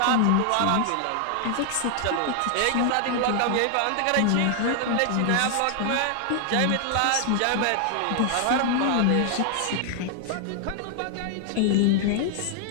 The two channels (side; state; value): both; different; correlation 0.00